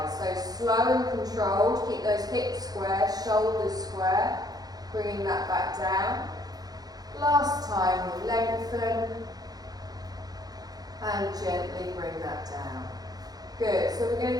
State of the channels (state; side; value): late; left; 0.19 ms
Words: So slow and controlled, keep those hips square, shoulders square. Bringing that back down. Last time, we lengthen. And gently bring that down. Good, so we're